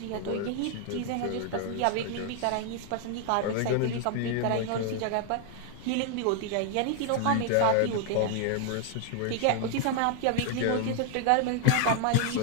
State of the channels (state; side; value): different; both; correlation 0.00